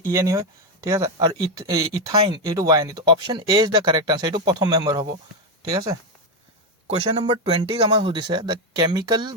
ENE হয় ঠিক আছে আৰু ইথাইন এটো YNE তো option A is the correct answer এটো প্ৰথম মেম্বাৰ হ'ব ঠিক আছে क्वेश्चन नंबर 20 আমাক সুধিছে the chemical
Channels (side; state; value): both; normal; correlation 0.07